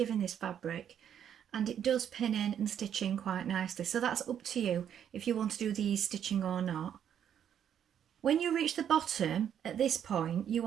in this fabric and it does pin in and stitch in quite nicely. So that's up to you if you want to do the ease stitching or not. When you reach the bottom at this point, you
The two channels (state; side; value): quieter; left; 9.2 dB